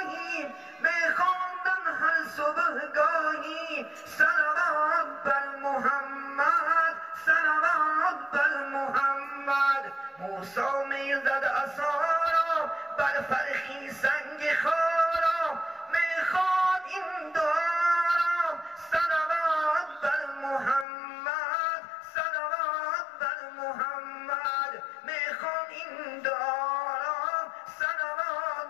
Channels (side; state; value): right; drops out; at 20.9 s